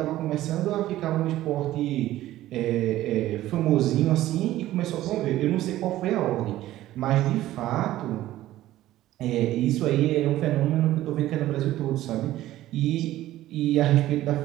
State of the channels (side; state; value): left; quieter; 14.7 dB